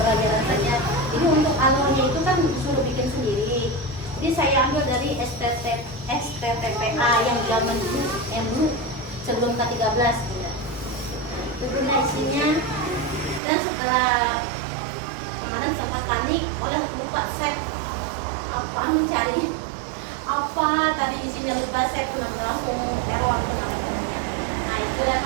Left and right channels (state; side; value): drops out; left; at 13.4 s